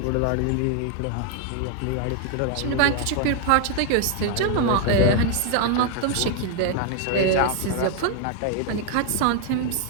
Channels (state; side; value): different; both; correlation 0.00